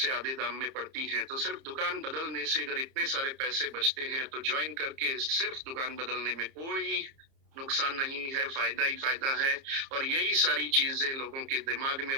आधे दाम में पड़ती हैं, तो सिर्फ दुकान बदलने से अगर इतने सारे पैसे बचते हैं तो ज्वाइन करके सिर्फ दुकान बदलने में कोई नुकसान नहीं है, फायदा ही फायदा है। और यही सारी चीजें लोगों के दिमाग में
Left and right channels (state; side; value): late; left; 30 ms